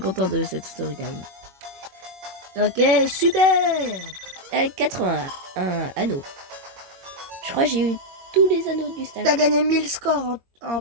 de cette storytime. Ok, super. 81 anneaux. Je crois que j'ai eu tous les anneaux du stage. T'as gagné 1000 scores en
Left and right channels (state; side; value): late; left; 21 ms